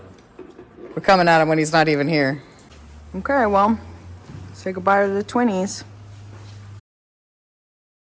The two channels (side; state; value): both; identical; correlation 1.00